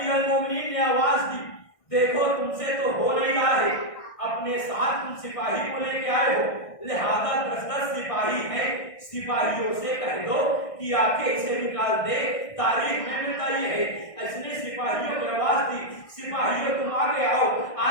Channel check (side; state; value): right; late; 1.6 ms